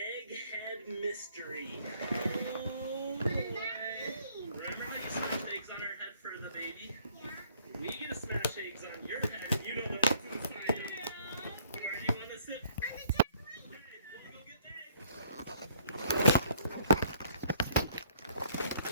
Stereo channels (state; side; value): inverted; both; correlation -0.62